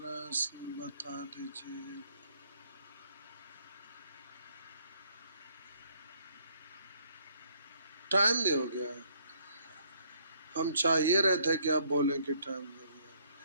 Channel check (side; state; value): both; inverted; correlation -0.65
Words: बता दीजिए। टाइम भी हो गया। हम चाहिए रहे थे कि आप बोलें कि टाइम हो गया।